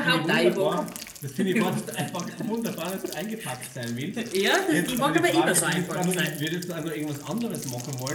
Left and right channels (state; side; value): identical; both; correlation 1.00